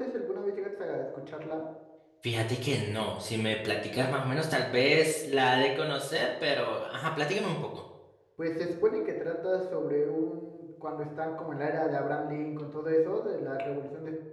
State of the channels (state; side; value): identical; both; correlation 1.00